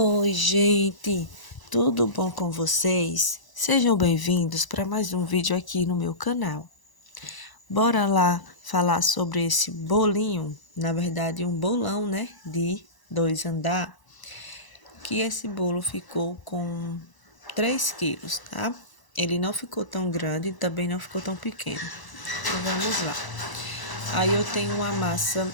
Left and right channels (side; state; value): right; late; 1.0 ms